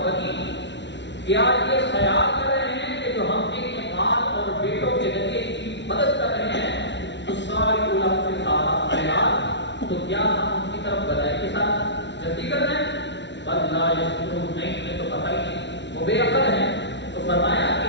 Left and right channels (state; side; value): late; right; 0.51 ms